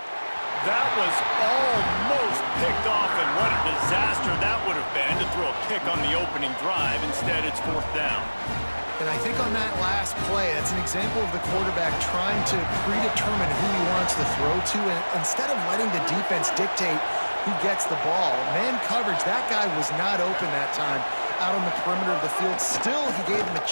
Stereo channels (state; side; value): inverted; both; correlation -1.00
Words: That was almost picked off, and what a disaster that would have been to throw a pick on the opening drive. Instead, it's 4th down. And I think on that last play, that's an example of the quarterback trying to predetermine who he wants to throw to, and instead of letting the defense dictate who gets the ball. Man coverage, that guy was not open that time out on the perimeter of the field. Still, he gave him a